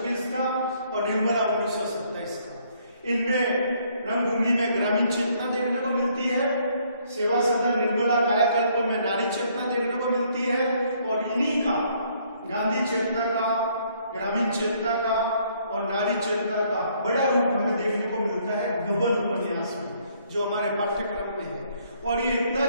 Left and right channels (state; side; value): inverted; both; correlation -0.66